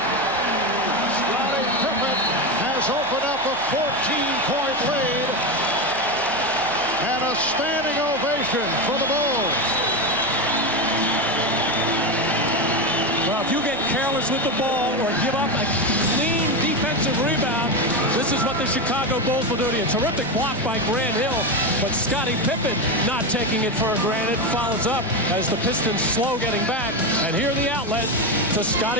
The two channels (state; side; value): normal; both; correlation 0.14